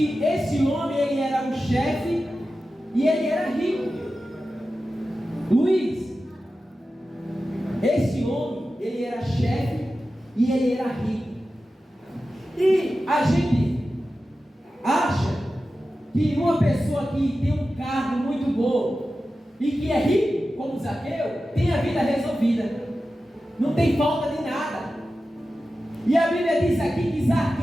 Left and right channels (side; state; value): both; normal; correlation 0.93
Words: esse homem, ele era um chefe e ele era rico. Luiz, esse homem, ele era chefe e ele era rico. E a gente acha que uma pessoa que tem um cargo muito bom e que é rico, como Zaqueu, tem a vida resolvida, não tem falta de nada. E a Bíblia diz aqui que